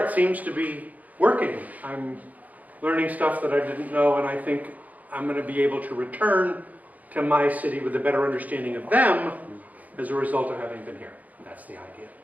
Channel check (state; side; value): late; left; 0.077 ms